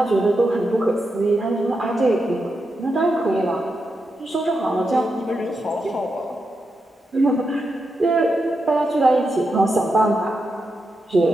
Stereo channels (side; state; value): both; normal; correlation 0.86